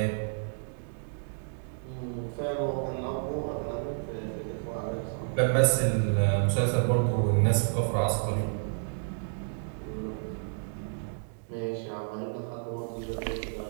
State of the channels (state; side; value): silent; left; digital silence